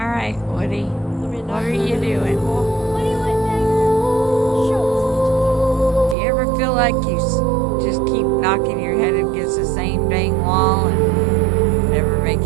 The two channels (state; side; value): drops out; left; at 6.2 s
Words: right, Woody. What are you doing? What do you want, Daddy? Show Do you ever feel like you just keep knocking your head against the same dang wall and never make